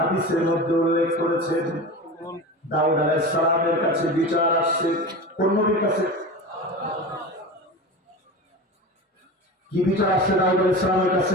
মধ্যে উল্লেখ করেছেন দাউদ আলাইহিস সালামের কাছে বিচার আসছে। কোন নবীর কাছে? কি বিচার আসছে দাউদ আলাইহিস সালামের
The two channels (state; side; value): normal; both; correlation 0.29